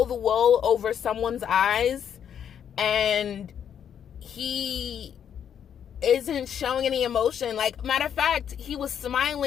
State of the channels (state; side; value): quieter; right; 8.7 dB